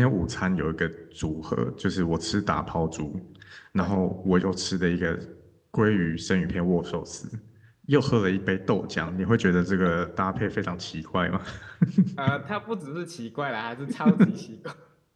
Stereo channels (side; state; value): both; identical; correlation 1.00